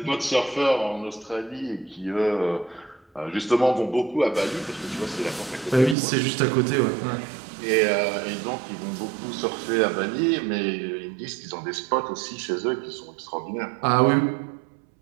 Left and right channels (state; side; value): drops out; left; at 6.0 s